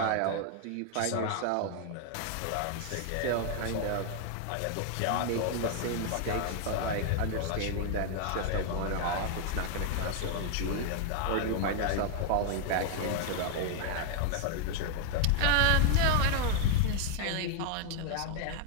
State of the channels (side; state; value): both; different; correlation 0.00